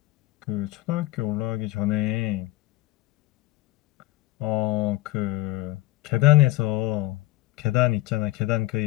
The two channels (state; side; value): quieter; right; 17.5 dB